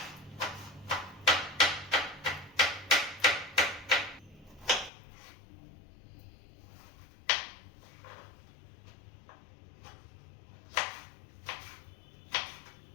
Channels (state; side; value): drops out; right; at 4.9 s